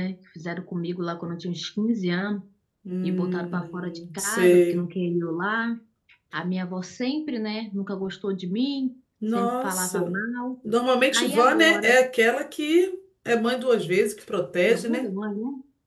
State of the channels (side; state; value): both; identical; correlation 1.00